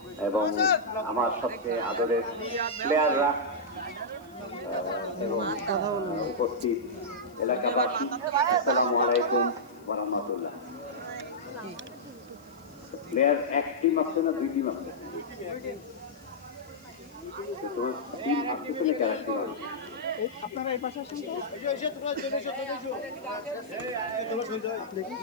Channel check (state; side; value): noise; left; hiss, 29 dB below the sound